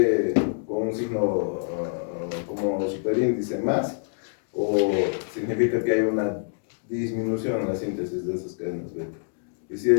con un signo como superíndice más, o significa que hay una disminución en la síntesis de esas cadenas beta. Y si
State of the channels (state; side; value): silent; right; digital silence